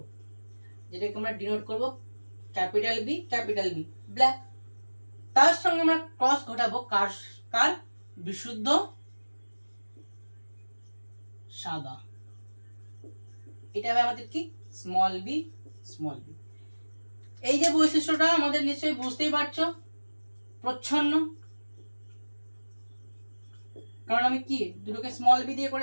যেটাকে আমরা ডিনোট করব capital B, capital B, black. তার সঙ্গে আমরা ক্রস ঘটাবো কার? কার? বিশুদ্ধ সাদা। এটা হবে আমাদের কি? Small B, small B. এই যে বৈশিষ্ট্যটা আমাদের নিশ্চয়ই বুঝতেই পারছো, প্রচ্ছন্ন, কারণ আমি কি দুটোকে স্মল বি দিয়ে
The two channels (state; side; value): inverted; both; correlation -1.00